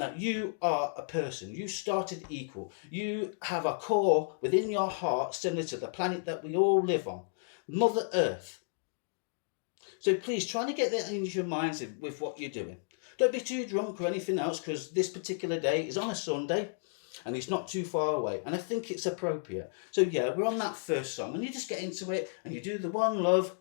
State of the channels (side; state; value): right; silent; digital silence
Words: you are a person. You started equal. You have a core within your heart similar to the planet that we all live on, Mother Earth. So please try to get that into your minds with what you're doing. Don't be too drunk or anything else, because this particular day is on a Sunday. And it's not too far away, and I think it's appropriate. So yeah, we're on that first song, and you just get into it, and you do the one love,